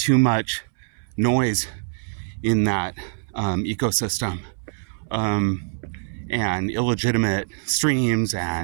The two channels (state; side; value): silent; left; 63 dB below the other